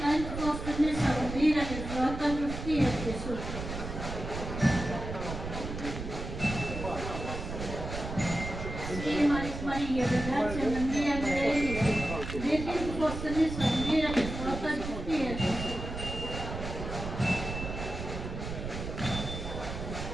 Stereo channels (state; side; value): noise; right; rumble, 7 dB below the sound